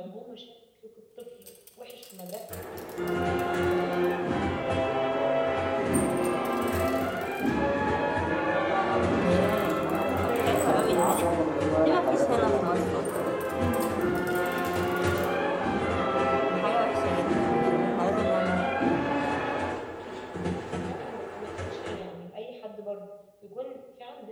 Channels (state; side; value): identical; both; correlation 1.00